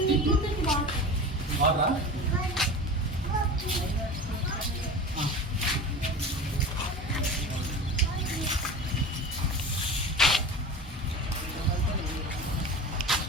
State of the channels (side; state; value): both; normal; correlation 0.32